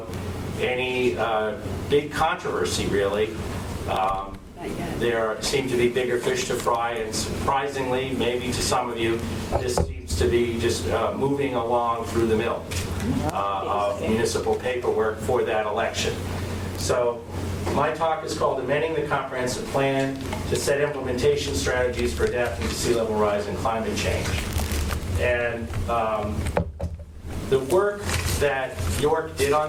any big controversy, really. There seem to be bigger fish to fry, and surprisingly, maybe to some of you, this seems to be just moving along through the mill of municipal paperwork for that election. So my talk is called Amending the Comprehensive Plan to Set Implementation Strategies for Adapting to Sea Level Rise and Climate Change. And the work that York did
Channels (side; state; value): both; identical; correlation 1.00